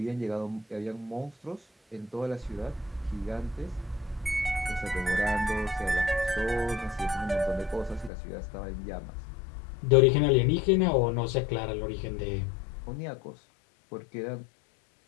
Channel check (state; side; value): drops out; right; at 8.1 s